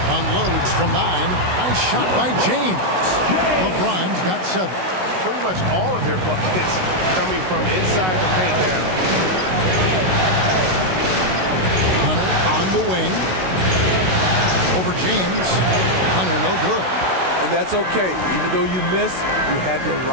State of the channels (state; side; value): late; left; 16 ms